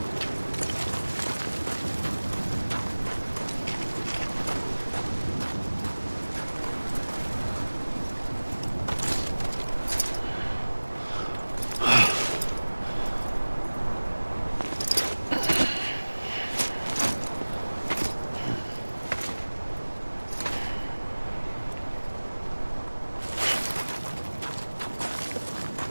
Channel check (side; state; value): both; inverted; correlation -1.00